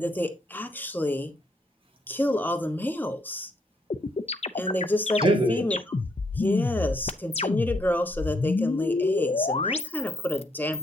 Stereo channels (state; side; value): normal; both; correlation 0.73